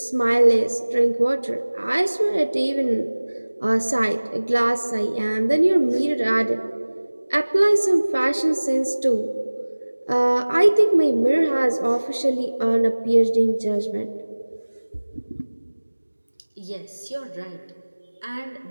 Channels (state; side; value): inverted; both; correlation -1.00